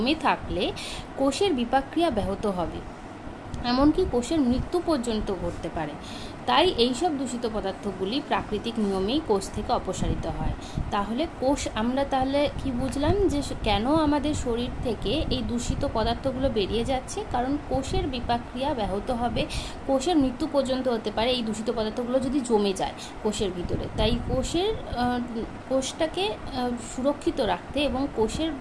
থাকলে কোষের বিপাকক্রিয়া ব্যাহত হবে, এমনকি কোষের মৃত্যু পর্যন্ত ঘটতে পারে। তাই এইসব দূষিত পদার্থগুলি প্রাকৃতিক নিয়মেই কোষ থেকে অপসারিত হয়। তাহলে আমরা তাহলে কি বুঝলাম যে কেন আমাদের শরীর থেকে এই দূষিত পদার্থগুলো বেরিয়ে যাচ্ছে? কারণ কোষের বিপাকক্রিয়া ব্যাহত হবে, কোষের মৃত্যু পর্যন্ত হতে পারে এই দূষিত পদার্থগুলো যদি জমে যায় কোষের ভিতরে। তাই কোষটাকে সুরক্ষিত রাখতে এবং কোষের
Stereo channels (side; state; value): both; identical; correlation 1.00